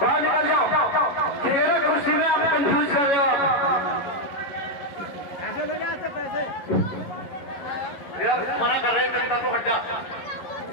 बाहर निकल जाओ, ठीक है ना? कुर्सी में आप कंफ्यूज कर रहे हो आप। यार मना कर रहे हैं, जनता को हट जा,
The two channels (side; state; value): right; late; 11 ms